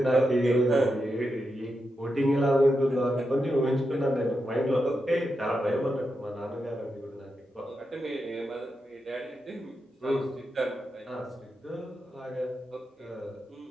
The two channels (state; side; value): normal; both; correlation 0.87